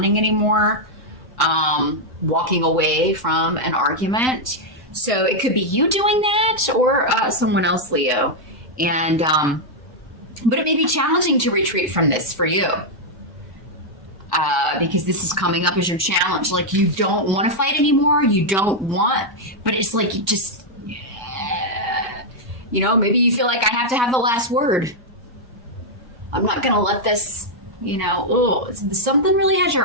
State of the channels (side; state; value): left; late; 1.2 ms